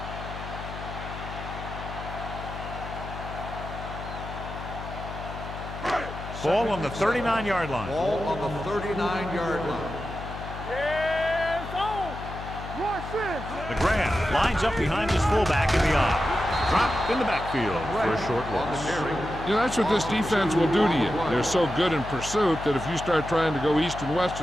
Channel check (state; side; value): noise; left; hum, 10 dB below the sound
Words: Ball on the 39-yard line. Ball on the 39-yard line. Yeah, it's on. McGrath lines up behind his fullback in the I. Drop in the backfield for a short loss. You know, that's what this defense will do to you. They're so good in pursuit that if you start trying to go east and west